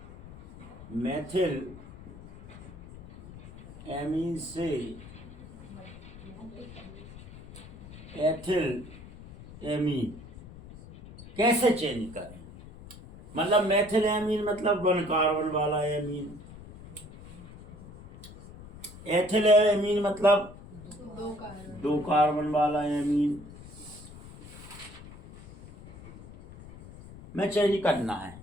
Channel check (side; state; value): left; noise; rumble, 16 dB below the sound